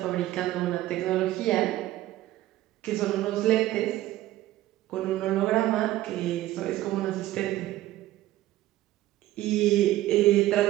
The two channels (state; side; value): quieter; left; 15.3 dB